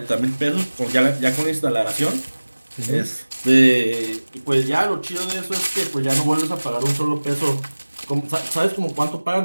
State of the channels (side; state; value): both; inverted; correlation -1.00